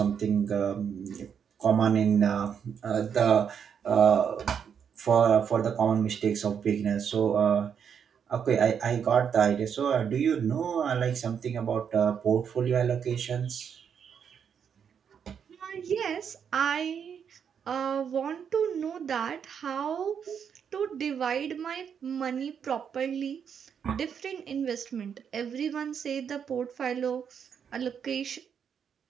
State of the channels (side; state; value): left; quieter; 7.5 dB